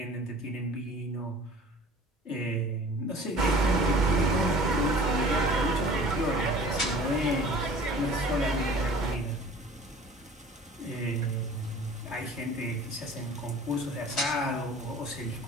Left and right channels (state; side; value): normal; both; correlation 0.46